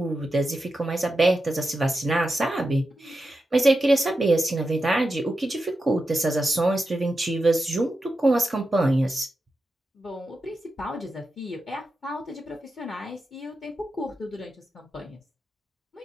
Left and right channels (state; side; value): normal; both; correlation 0.90